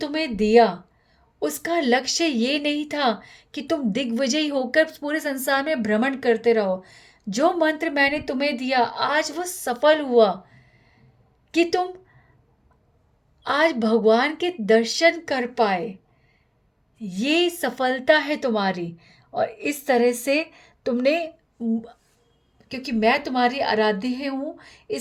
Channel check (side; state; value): both; identical; correlation 1.00